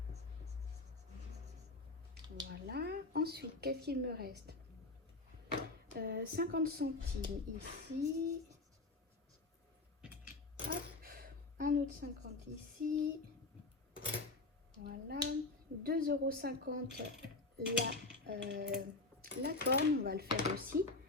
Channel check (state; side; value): quieter; right; 3.3 dB